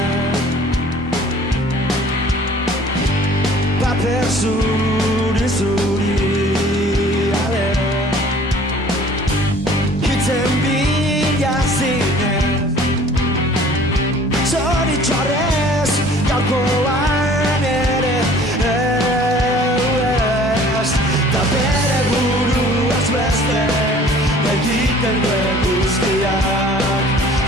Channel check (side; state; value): both; normal; correlation 0.51